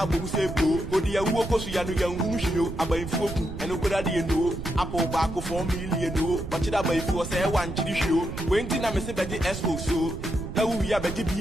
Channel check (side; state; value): right; noise; rumble, 8 dB below the sound